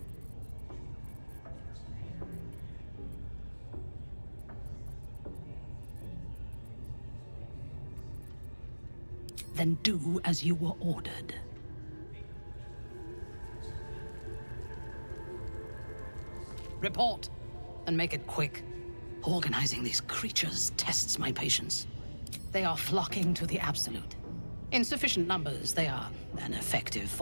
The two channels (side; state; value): both; inverted; correlation -1.00